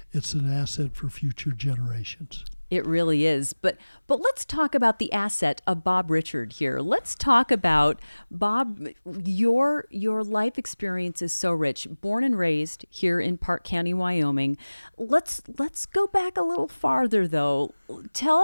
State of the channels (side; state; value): both; inverted; correlation -1.00